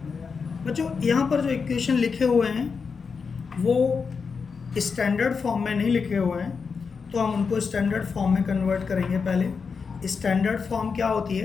बच्चों यहाँ पर जो इक्वेशन लिखे हुए हैं वो स्टैंडर्ड फॉर्म में नहीं लिखे हुए हैं, तो हम उनको स्टैंडर्ड फॉर्म में कन्वर्ट करेंगे। पहले स्टैंडर्ड फॉर्म क्या होती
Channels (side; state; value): right; quieter; 5.4 dB